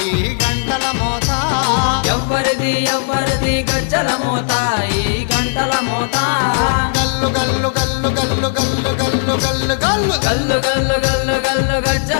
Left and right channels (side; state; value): right; silent; digital silence